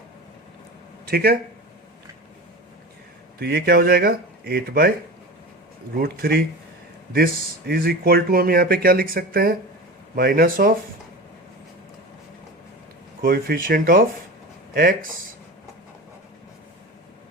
ठीक है, तो ये क्या हो जाएगा, 8/√3। दिस इज इक्वल टू, हम यहाँ पे क्या लिख सकते हैं, minus of coefficient of x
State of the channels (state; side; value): normal; both; correlation 0.30